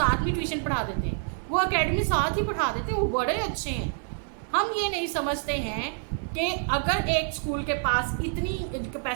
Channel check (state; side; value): silent; left; 60 dB below the other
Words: में ट्यूशन पढ़ा देते हैं, वो अकेडमी साथ ही पढ़ा देते हैं, वो बड़े अच्छे हैं। हम ये नहीं समझते हैं कि अगर एक स्कूल के पास इतनी